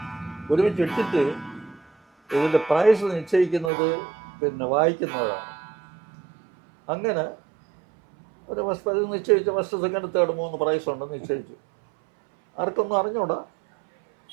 ഒരുമിച്ചിട്ടിട്ട് ഇതിൻ്റെ പ്രൈസ് നിശ്ചയിക്കുന്നത് പിന്നെ വായിക്കുന്നവരാണ്. അങ്ങനെ ഒരു ഫസ്റ്റ് പ്രൈസ് നിശ്ചയിച്ചു. ഫസ്റ്റ് സെക്കൻഡ് തേർഡ് 3 പ്രൈസ് ഉണ്ടെന്ന് നിശ്ചയിച്ചു. ആർക്കൊന്നും അറിഞ്ഞൂടാ.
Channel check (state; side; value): drops out; left; at 3.7 s